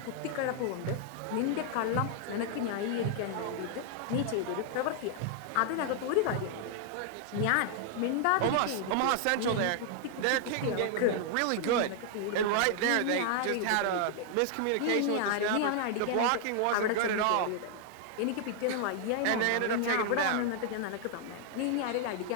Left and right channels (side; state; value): both; different; correlation 0.00